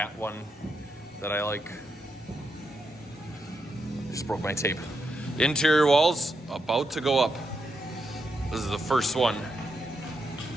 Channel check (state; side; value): normal; both; correlation 0.83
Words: one that I like. Just broke my tape. Interior walls about to go up. This is the first one.